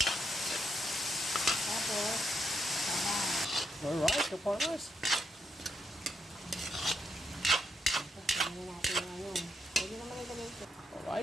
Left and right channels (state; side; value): normal; both; correlation 0.80